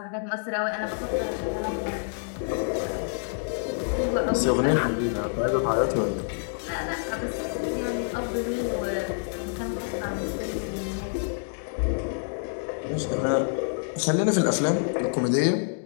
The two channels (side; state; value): right; silent; digital silence